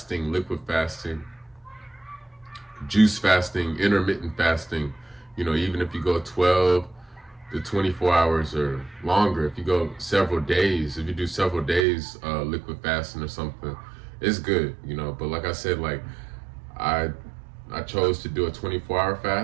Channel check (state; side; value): drops out; left; at 11.9 s